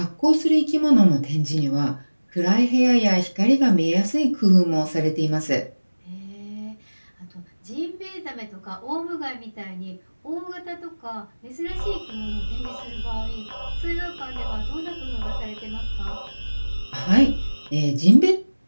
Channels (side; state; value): both; inverted; correlation -1.00